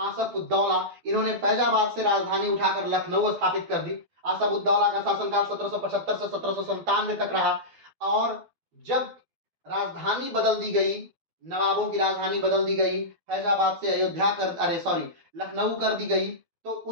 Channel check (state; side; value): late; left; 12 ms